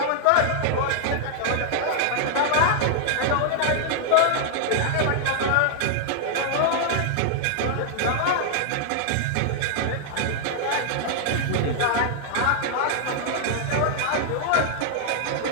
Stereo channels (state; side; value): different; both; correlation -0.01